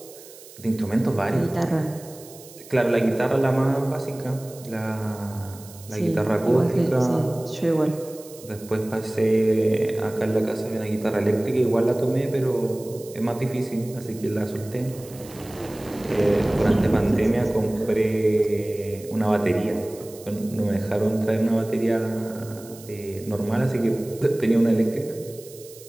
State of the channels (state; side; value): noise; right; hiss, 19 dB below the sound